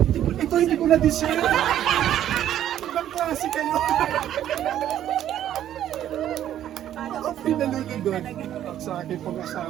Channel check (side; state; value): left; quieter; 11.4 dB